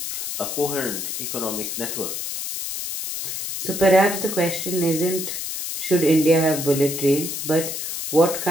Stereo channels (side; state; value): left; noise; hiss, 5 dB below the sound